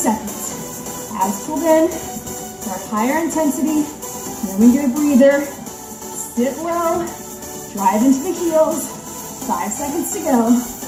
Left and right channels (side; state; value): both; identical; correlation 1.00